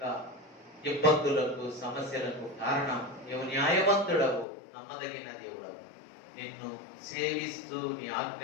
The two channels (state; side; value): drops out; right; at 4.5 s